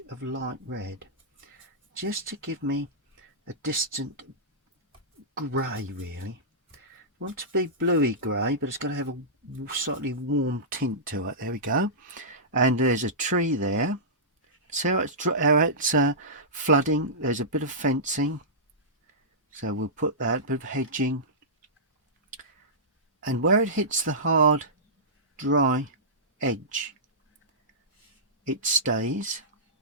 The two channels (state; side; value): normal; both; correlation -0.17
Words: of light red, just to give me a distant grey really. I want it to be bluey grey, but it's got to have a slightly warm tint to it. There we go. And there's a tree there. See how it's flooding. There's a bit of fencing, so we'll put that, bit of hedging. And where it hits the hard, dry edge, it stays.